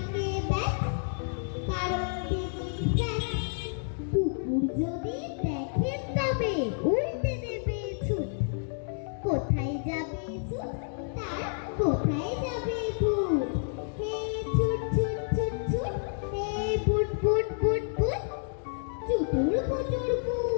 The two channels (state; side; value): silent; right; digital silence